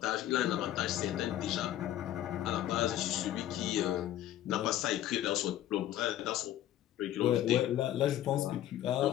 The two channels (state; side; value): quieter; right; 12.6 dB